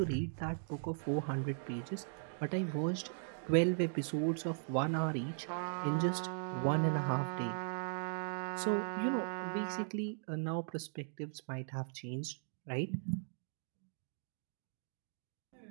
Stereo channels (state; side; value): silent; left; digital silence